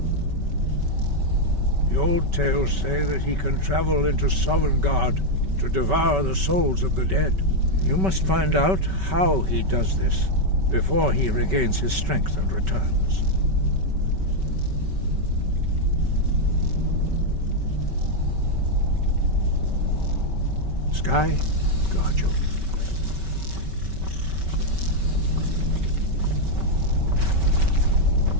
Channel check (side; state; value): left; late; 5.2 ms